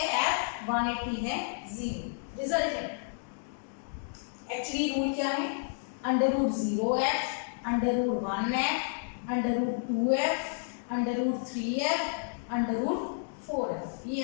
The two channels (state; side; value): silent; right; digital silence